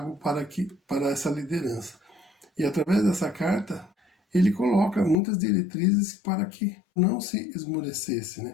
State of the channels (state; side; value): drops out; right; at 5.2 s